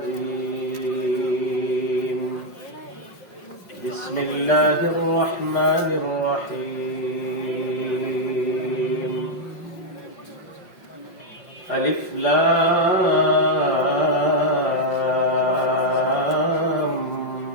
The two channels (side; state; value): right; late; 5.4 ms